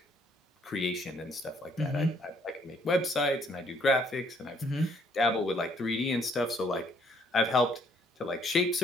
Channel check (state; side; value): normal; both; correlation 0.66